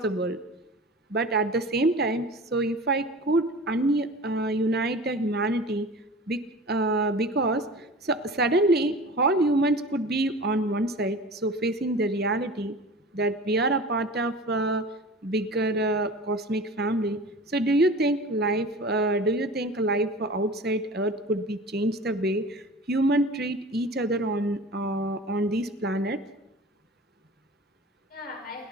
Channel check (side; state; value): both; normal; correlation 0.37